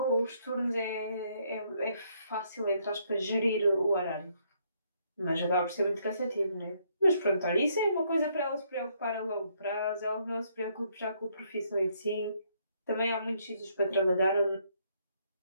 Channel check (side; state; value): both; inverted; correlation -0.71